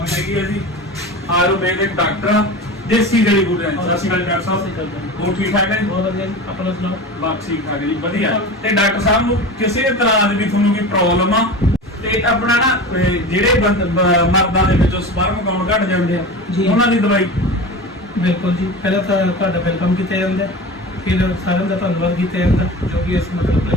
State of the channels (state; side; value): normal; both; correlation 0.31